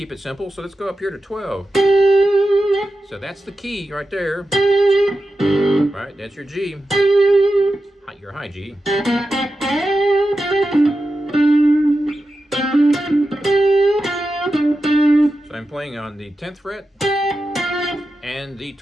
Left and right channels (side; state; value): both; normal; correlation 0.91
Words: it simple. So let's go up here to 12. So that's the key right there. Right, that's your G. Your high G. So I'm playing on the 10th fret and the